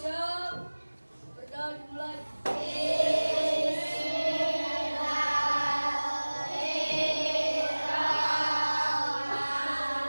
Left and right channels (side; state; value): both; inverted; correlation -1.00